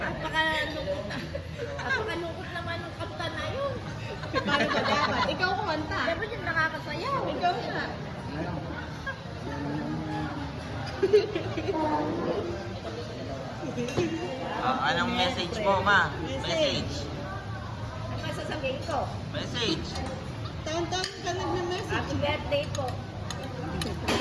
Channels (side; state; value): both; identical; correlation 1.00